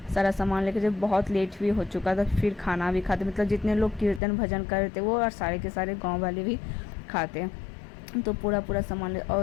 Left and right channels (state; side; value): drops out; right; at 4.2 s